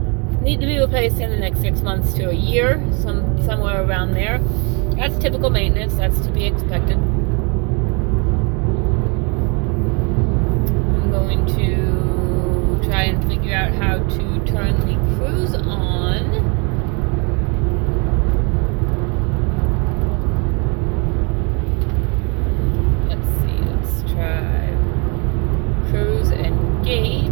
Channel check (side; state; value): left; quieter; 32.6 dB